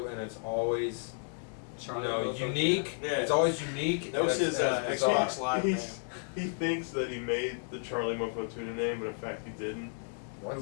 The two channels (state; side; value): silent; right; 56 dB below the other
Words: and it's always unique. Yeah. It's always unique. That was and his it's bizarre. Xbox Live name. He thinks that he made the Charlie Mofo tuna name, but in fact he didn't. What?